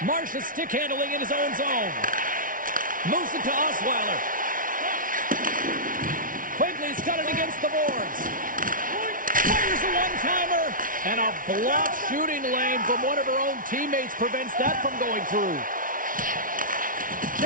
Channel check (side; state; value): left; late; 0.39 ms